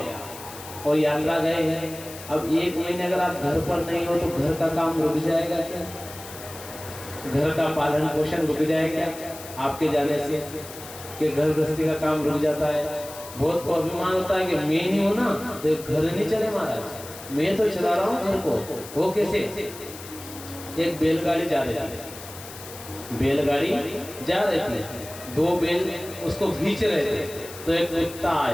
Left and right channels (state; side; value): noise; left; hiss, 14 dB below the sound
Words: और यात्रा गए हैं। अब 1 महीने अगर आप घर पर नहीं हो तो घर का काम रुक जाएगा क्या? घर का पालन पोषण रुक जाएगा आपके जाने से? कि घर गृहस्थी का काम रुक जाता है। बहुत को अभिमान होता है कि मैं नहीं हूं ना तो घर नहीं चले महाराज, मैं तो चला रहा हूँ घर को। वो कैसे? एक बैलगाड़ी जा रही थी, बैलगाड़ी जा रही थी, 2 बैल उसको खींच रहे थे, तो एक कुत्ता